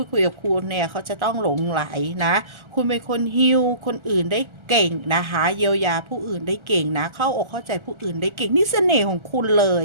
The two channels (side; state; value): left; late; 1.3 ms